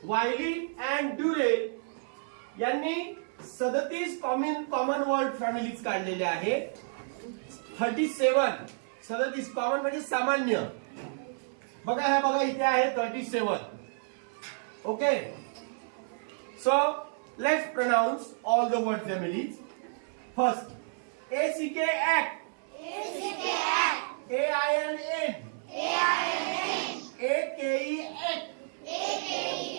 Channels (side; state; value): left; silent; 57 dB below the other